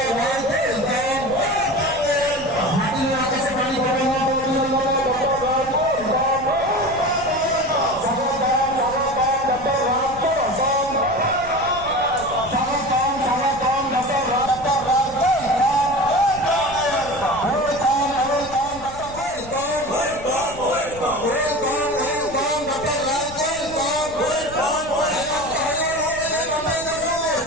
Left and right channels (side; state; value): left; noise; rumble, 16 dB below the sound